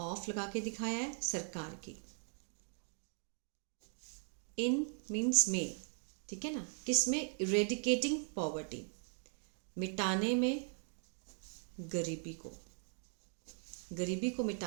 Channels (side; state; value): left; silent; 51 dB below the other